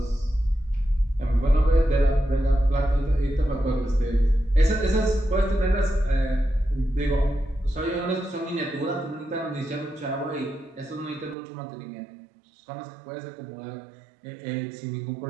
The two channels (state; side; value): drops out; left; at 11.4 s